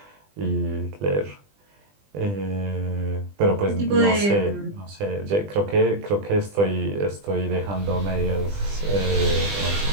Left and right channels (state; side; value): late; left; 20 ms